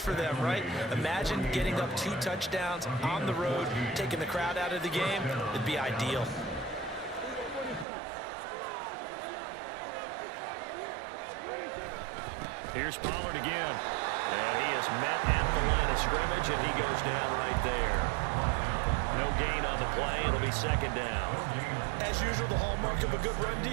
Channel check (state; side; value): drops out; left; at 7.9 s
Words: them, right? Imagine getting up 2 touchdowns on the road, taking the crowd out of the game. It'd be ideal. Here's Pollard again. And he is met at the line of scrimmage, and he goes down right there. No gain on the play. It'll be 2nd down. As usual, the hallmark of a good run